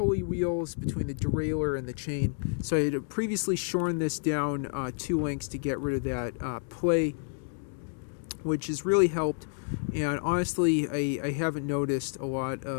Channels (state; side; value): silent; right; digital silence